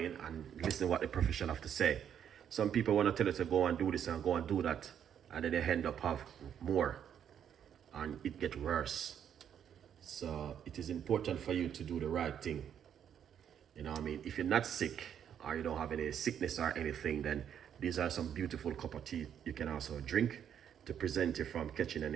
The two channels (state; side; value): quieter; left; 9.0 dB